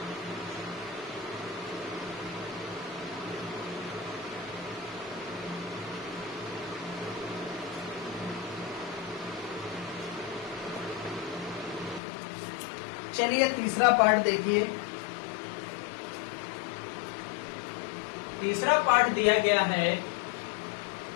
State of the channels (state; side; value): drops out; right; at 12.0 s